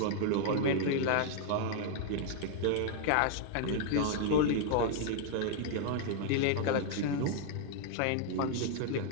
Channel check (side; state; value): both; different; correlation 0.00